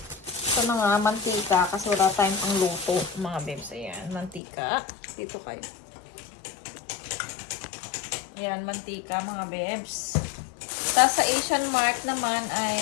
ito na nga, mantika. Kasi wala tayong pang luto mga bebs. Ayan, mantika. Dito kayo. Ayan, mantika mga bebs. Tapos sa Asian Mart naman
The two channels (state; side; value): drops out; right; at 4.4 s